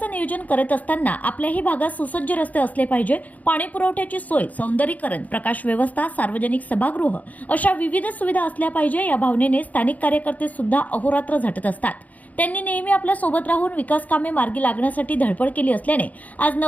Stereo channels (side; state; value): right; late; 0.076 ms